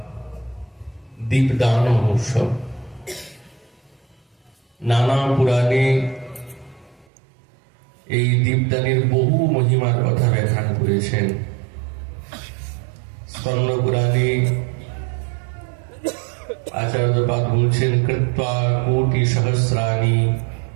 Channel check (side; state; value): left; drops out; at 7.1 s